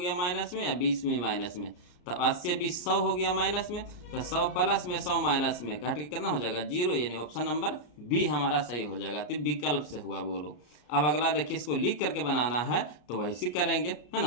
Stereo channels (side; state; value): right; late; 33 ms